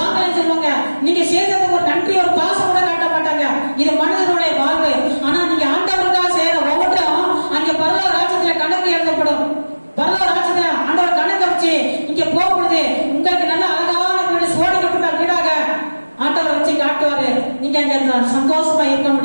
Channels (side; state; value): both; inverted; correlation -1.00